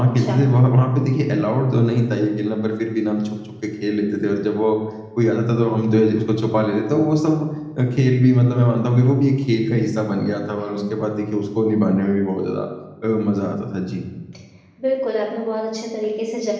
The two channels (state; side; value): identical; both; correlation 1.00